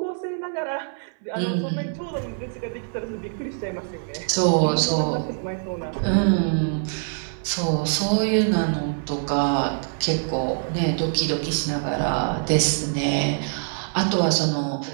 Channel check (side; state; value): left; silent; 59 dB below the other